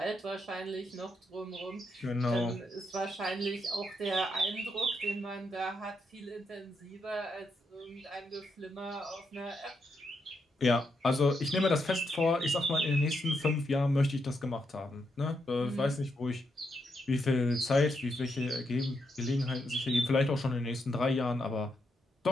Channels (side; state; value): both; normal; correlation 0.80